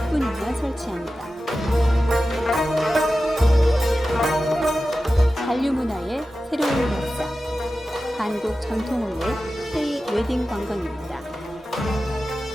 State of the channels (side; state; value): both; normal; correlation 0.93